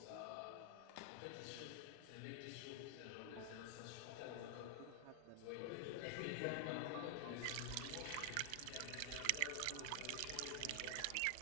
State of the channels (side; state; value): both; different; correlation 0.00